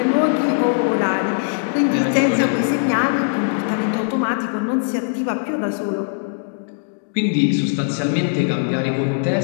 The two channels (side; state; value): right; silent; digital silence